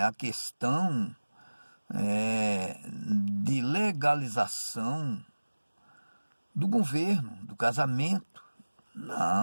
a questão de legalização do governo, do casamento.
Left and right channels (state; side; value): inverted; both; correlation -1.00